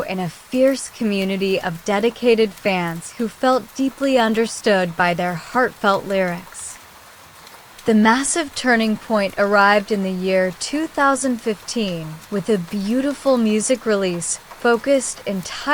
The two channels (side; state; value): both; identical; correlation 1.00